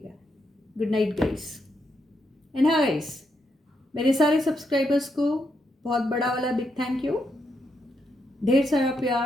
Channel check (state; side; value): normal; both; correlation 0.80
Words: Good night guys. एंड हाँ गाइस, मेरे सारे सब्सक्राइबर्स को बहुत बड़ा वाला बिग थैंक यू, ढेर सारा